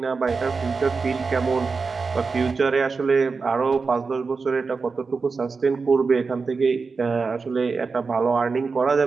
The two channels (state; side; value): quieter; left; 4.6 dB